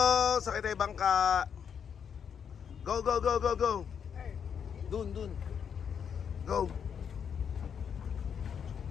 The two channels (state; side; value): quieter; right; 7.5 dB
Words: Sakay tayo bangka. Go, go, go, go, go. Dun. Go.